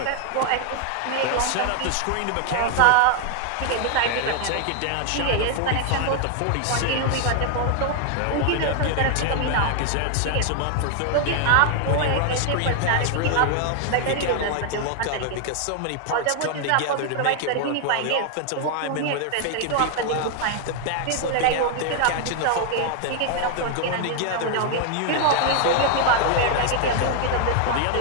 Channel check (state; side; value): different; both; correlation 0.00